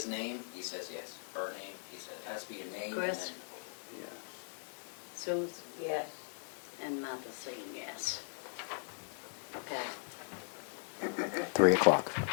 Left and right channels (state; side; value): silent; right; digital silence